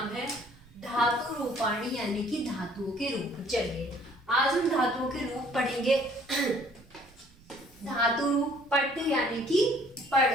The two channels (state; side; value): noise; right; rumble, 27 dB below the sound